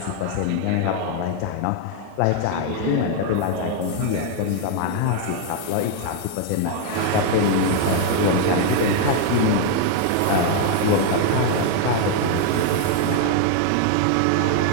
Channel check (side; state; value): both; different; correlation 0.00